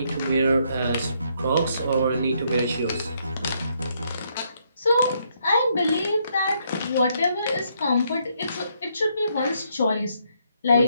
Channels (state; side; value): inverted; both; correlation -0.73